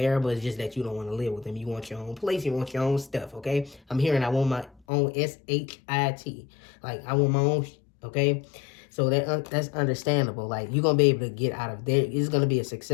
It's just that you don't want to live with them. You want your own place. You want your own stuff. Okay, I'm hearing I want my own SHIT. I want my own. Okay. So that's understandable. You're going to be able to get out of there. It's going to be a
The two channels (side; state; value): right; drops out; at 4.8 s